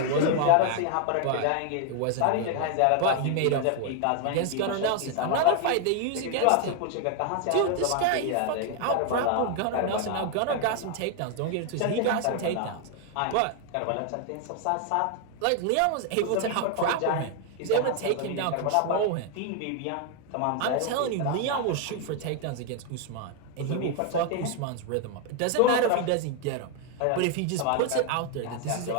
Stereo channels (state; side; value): different; both; correlation 0.00